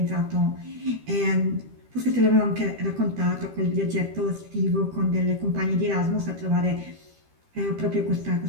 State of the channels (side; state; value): left; late; 13 ms